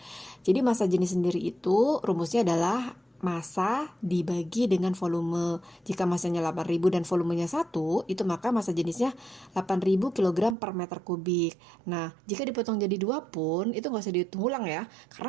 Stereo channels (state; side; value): drops out; left; at 10.6 s